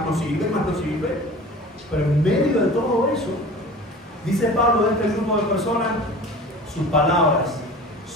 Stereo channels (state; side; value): normal; both; correlation 0.40